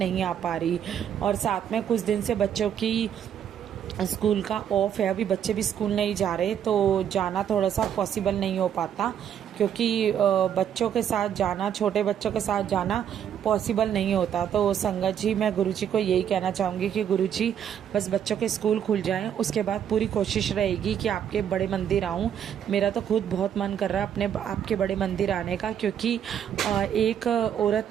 आ पा रही। और साथ में कुछ दिन से बच्चों की स्कूल का ऑफ है, अभी बच्चे भी स्कूल नहीं जा रहे, तो जाना थोड़ा सा पॉसिबल नहीं हो पाता, क्योंकि बच्चों के साथ जाना, छोटे बच्चों के साथ जाना पॉसिबल नहीं होता। तो संगत जी, मैं गुरुजी को यही कहना चाहूँगी कि गुरुजी, बस बच्चों के स्कूल खुल जाएं, उसके बाद पूरी कोशिश रहेगी कि आपके बड़े मंदिर आऊँ। मेरा तो खुद बहुत मन कर रहा है अपने आपके बड़े मंदिर आने का, क्योंकि एक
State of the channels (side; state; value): left; quieter; 9.2 dB